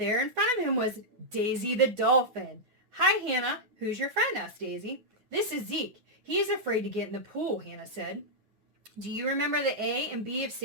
in front of him was Daisy the dolphin. Hi, Hannah. Who's your friend? Asked Daisy. This is Zeke. He's afraid to get in the pool, Hannah said. Do you remember the A and B of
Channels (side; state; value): left; late; 9.4 ms